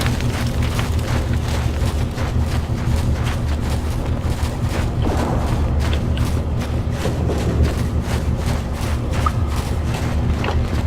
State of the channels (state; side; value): identical; both; correlation 1.00